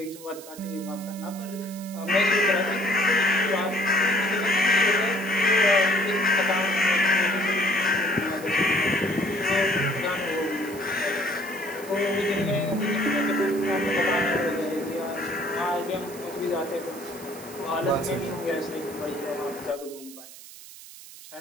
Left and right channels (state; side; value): noise; right; hiss, 17 dB below the sound